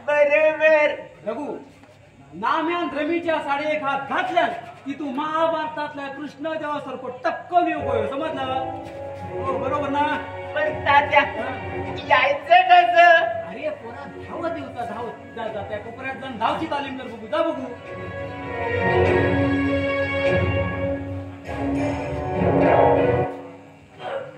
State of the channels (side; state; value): both; identical; correlation 1.00